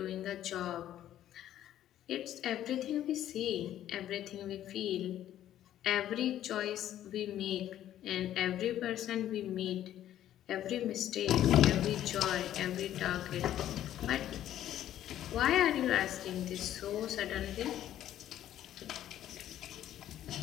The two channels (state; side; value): quieter; right; 11.9 dB